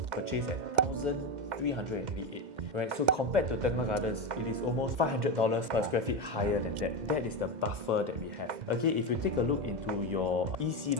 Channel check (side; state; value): left; late; 2.1 ms